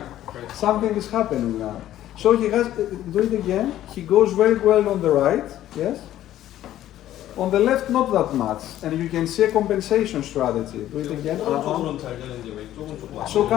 Something is happening now. So he has do it again. He goes very well on the right. Yes. On the left, not that much, and you can see a compensation strategy. Do it again. 오른쪽으로는 잘 되는데 왼쪽은 조금 안 So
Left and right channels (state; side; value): quieter; right; 12.9 dB